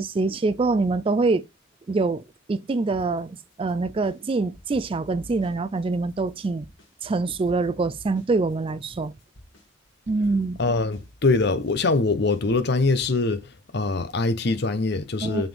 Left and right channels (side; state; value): both; normal; correlation 0.50